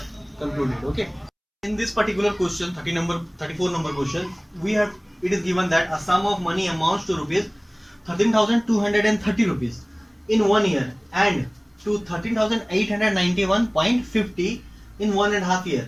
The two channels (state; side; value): identical; both; correlation 1.00